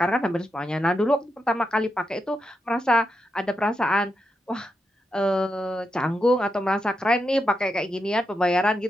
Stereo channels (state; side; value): normal; both; correlation 0.85